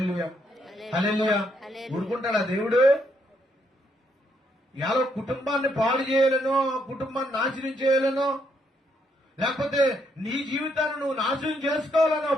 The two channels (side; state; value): both; normal; correlation 0.74